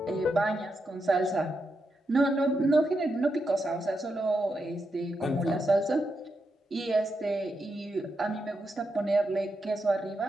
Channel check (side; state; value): both; normal; correlation 0.85